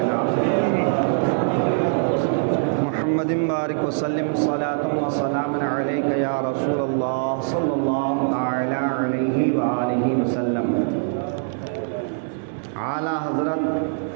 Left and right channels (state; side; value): silent; left; 60 dB below the other